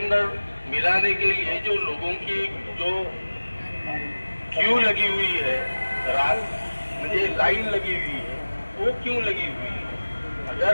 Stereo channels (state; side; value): inverted; both; correlation -1.00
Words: मिलाने के लिए जो लोगों की जो क्यू लगी हुई है, रात मुझे लाइन लगी हुई है, वो क्यों लगी हुई है?